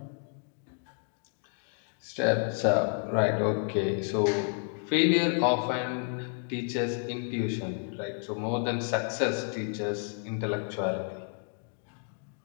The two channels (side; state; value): right; quieter; 37.0 dB